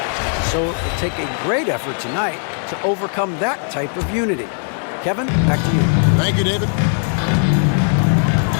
So it'll take a great effort tonight to overcome that type of unity. Kevin, back to you. Thank you, David.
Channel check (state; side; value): silent; right; 56 dB below the other